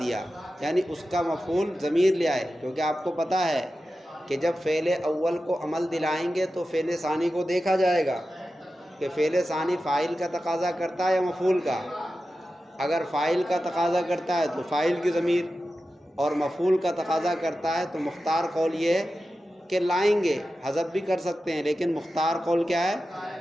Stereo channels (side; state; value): both; normal; correlation 0.93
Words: یعنی اس کا مفعول ضمیر لے آئے، کیونکہ آپ کو پتہ ہے کہ جب فعل اول کو عمل دلائیں گے تو فعل ثانی کو دیکھا جائے گا کہ فعل ثانی فاعل کا تقاضا کرتا ہے یا مفعول کا۔ اگر فاعل کا تقاضا کرتا ہے تو فاعل کی ضمیر، اور مفعول کا تقاضا کرتا ہے تو مختار قول یہ ہے کہ لائیں گے، حذف بھی کر سکتے ہیں لیکن مختار قول کیا ہے؟